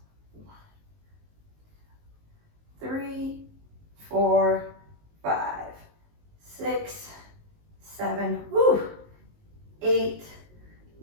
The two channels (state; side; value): late; left; 19 ms